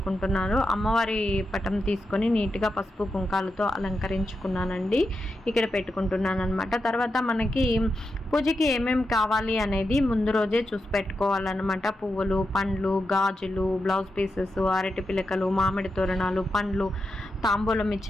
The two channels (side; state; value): both; normal; correlation 0.87